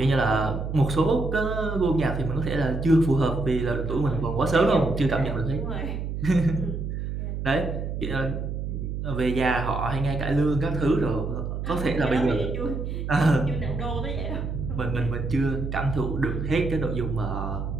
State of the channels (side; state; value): right; noise; hum, 4 dB below the sound